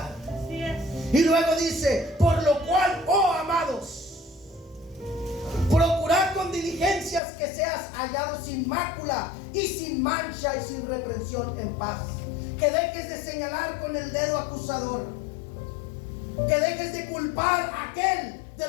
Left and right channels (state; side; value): drops out; right; at 7.2 s